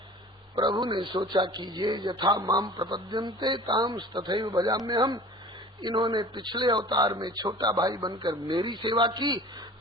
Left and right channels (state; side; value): normal; both; correlation 0.42